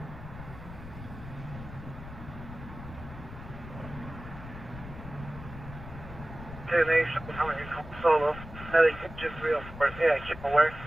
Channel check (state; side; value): noise; left; rumble, 13 dB below the sound